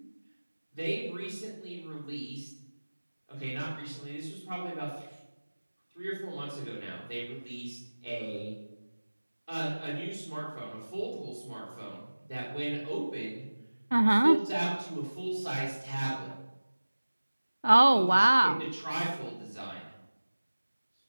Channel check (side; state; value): both; inverted; correlation -1.00